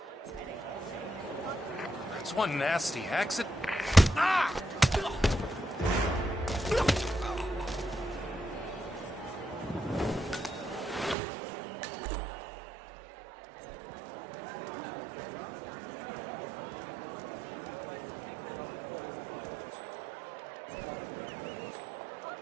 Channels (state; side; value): drops out; left; at 11.2 s